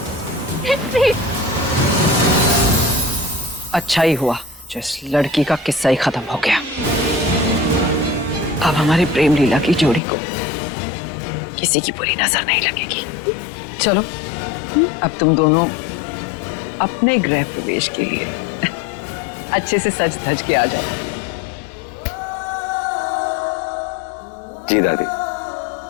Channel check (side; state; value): right; drops out; at 10.0 s